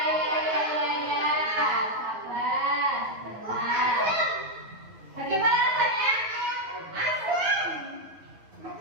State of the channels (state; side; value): late; left; 9.4 ms